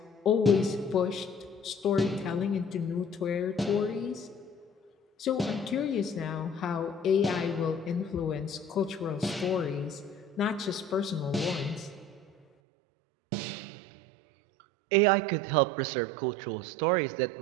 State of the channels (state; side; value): drops out; left; at 12.5 s